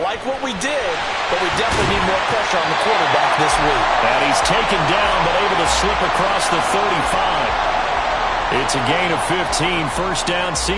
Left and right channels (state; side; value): identical; both; correlation 1.00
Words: like what we did, but we definitely need more pressure on the quarterback this week. And he's taken down but able to slip across the 35. It's a gain of 15, first down